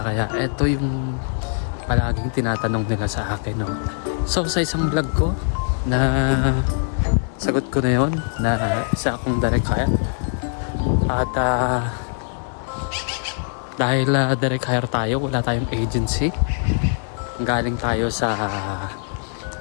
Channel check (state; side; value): silent; right; 58 dB below the other